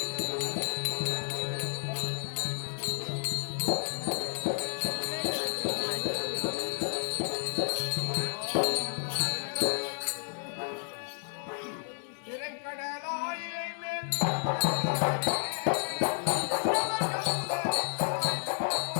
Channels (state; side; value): silent; right; 57 dB below the other